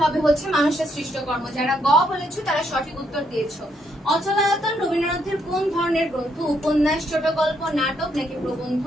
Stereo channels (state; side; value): normal; both; correlation 0.75